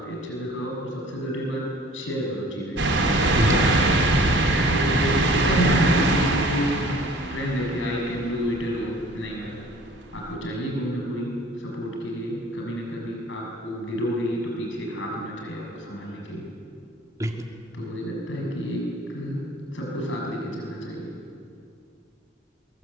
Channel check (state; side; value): normal; both; correlation 0.49